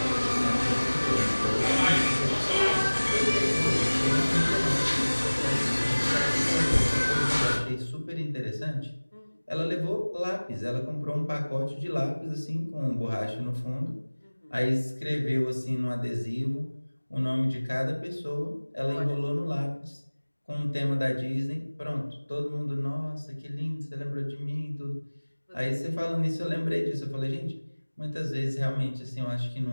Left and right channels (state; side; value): inverted; both; correlation -1.00